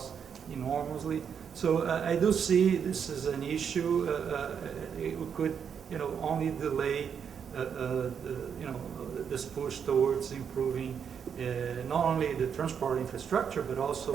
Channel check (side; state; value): left; quieter; 7.4 dB